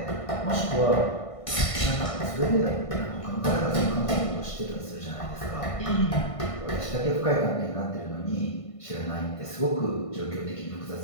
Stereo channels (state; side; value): late; right; 1.5 ms